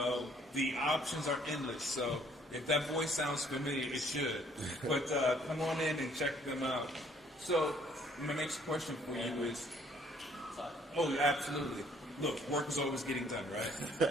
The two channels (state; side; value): normal; both; correlation 0.62